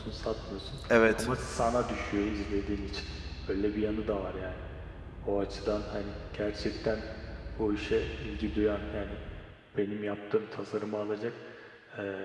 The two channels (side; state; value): both; identical; correlation 1.00